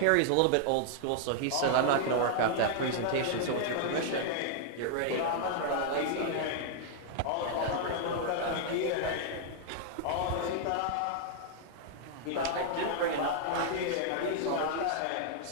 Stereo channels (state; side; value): different; both; correlation -0.01